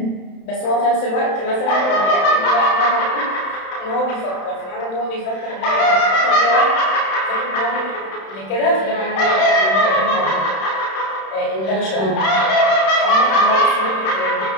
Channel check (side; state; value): right; late; 31 ms